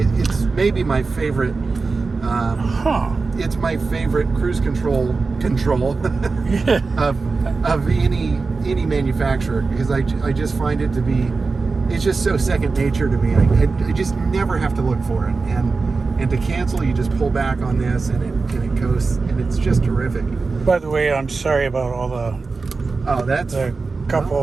It's maybe my favorite. It's my favorite cruise control of any manufacturer, because I just find it to be, it's just so second nature to me. I just never have to look for it, and to cancel, you just pull back on this, and it goes, and it's just terrific. By the way, I'm sorry about all the cup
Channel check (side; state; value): left; quieter; 4.2 dB